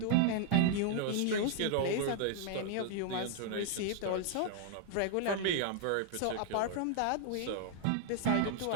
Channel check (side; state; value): both; different; correlation 0.00